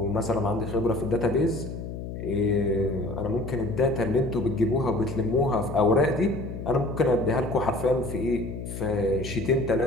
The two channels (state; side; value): noise; left; hum, 8 dB below the sound